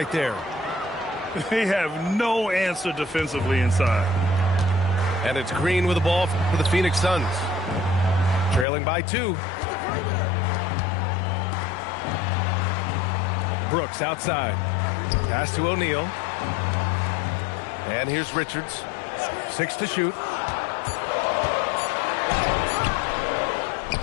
there. They have no answer defensively inside. And it's Green with the ball for the Phoenix Suns. Trailing by 2. Brooks outside. Pass to O'Neal. And here's Richards. 6 to shoot.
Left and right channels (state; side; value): drops out; right; at 8.7 s